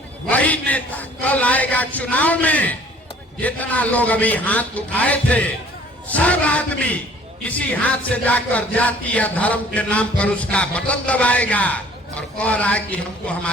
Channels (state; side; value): normal; both; correlation 0.54